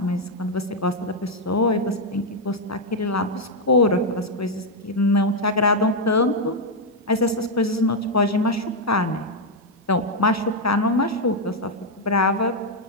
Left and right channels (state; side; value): normal; both; correlation 0.00